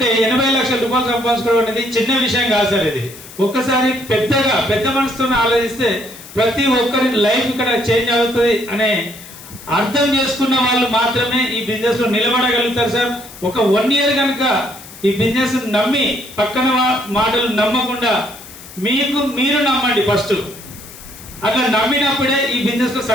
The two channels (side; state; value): left; noise; hiss, 17 dB below the sound